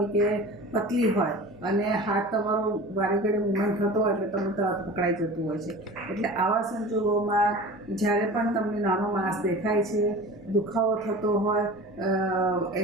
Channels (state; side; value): normal; both; correlation 0.37